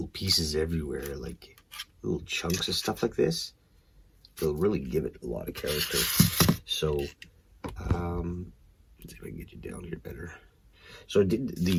pieces everywhere, like little chunks of stuff like this. It'll really give it a lot of character. So, let's see if I can get you down here better. So I did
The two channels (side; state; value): both; identical; correlation 1.00